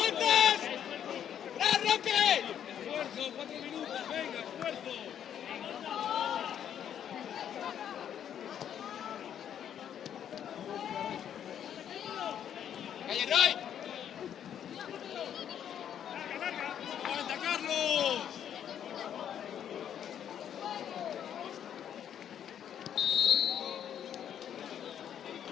¡Ra, Roque! Esfuerzo, 4 minutos, venga, esfuerzo. ¡Calle Roy! ¡Aguanta, Carlos!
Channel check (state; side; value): quieter; right; 9.4 dB